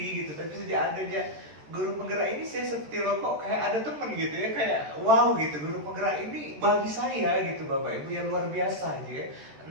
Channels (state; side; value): late; left; 13 ms